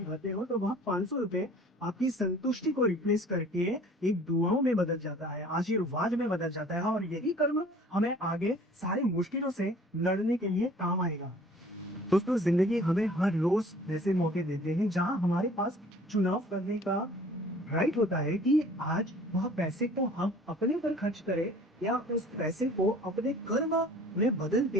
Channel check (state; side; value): normal; both; correlation 0.50